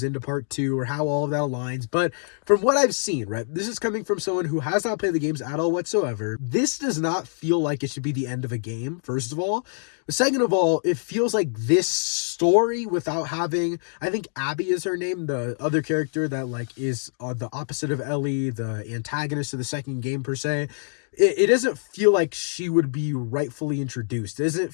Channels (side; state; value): right; silent; digital silence